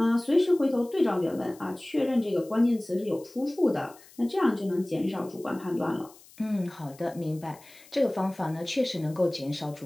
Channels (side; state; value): left; noise; hiss, 24 dB below the sound